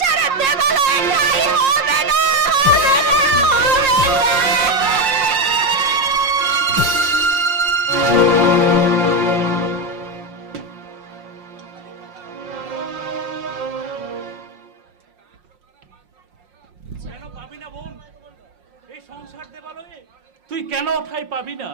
দেবালয়ে ঠাঁই হবে না, হবে না, হবে না। কেন পাবি না বোন এই সংসার দেবালয়ে? তুই কেন ঠাই পাবি না?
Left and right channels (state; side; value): late; left; 5.6 ms